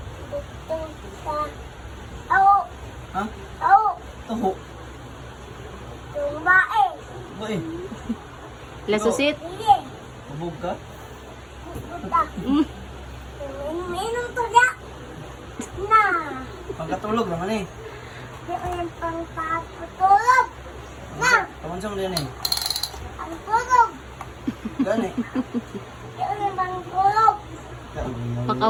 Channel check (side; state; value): both; identical; correlation 1.00